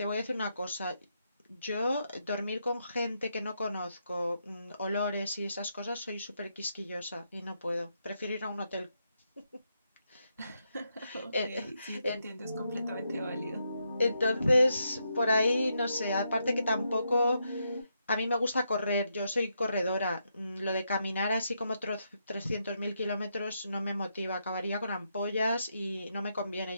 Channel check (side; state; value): both; inverted; correlation -0.81